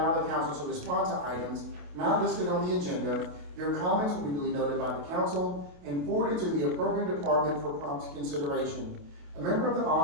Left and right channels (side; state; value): left; late; 28 ms